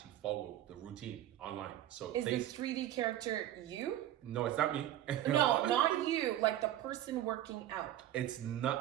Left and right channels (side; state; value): left; quieter; 12.7 dB